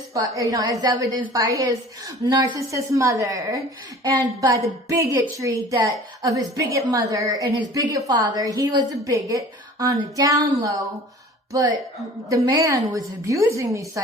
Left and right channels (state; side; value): normal; both; correlation 0.45